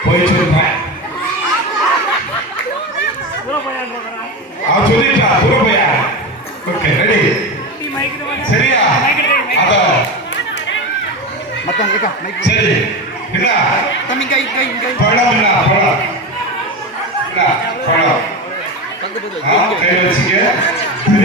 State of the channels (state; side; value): normal; both; correlation 0.21